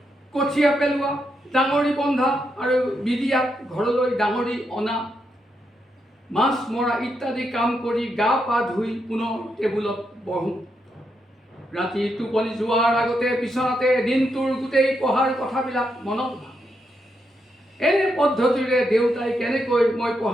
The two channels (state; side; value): normal; both; correlation 0.82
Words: কঠীয়া পেলোৱা, ডাঙৰি বন্ধা আৰু বিদিয়াত ঘৰলৈ ডাঙৰি অনা, মাছ মৰা ইত্যাদি কাম কৰি গা পা ধুই পুনৰ টেবুলত বহোঁ। ৰাতি টোপনি যোৱাৰ আগতে বিচনাতে দিনটোৰ গোটেই পঢ়াৰ কথাবিলাক মনত ভাবোঁ। এনে পদ্ধতিৰে দেউতাই কেনেকৈ মই